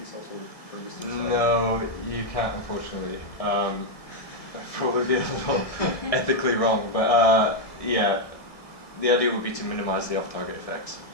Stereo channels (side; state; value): right; late; 1.7 ms